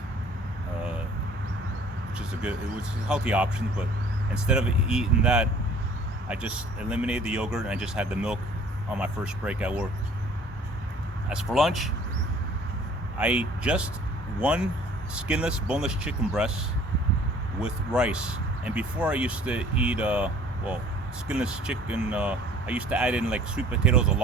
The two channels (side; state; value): both; normal; correlation 0.53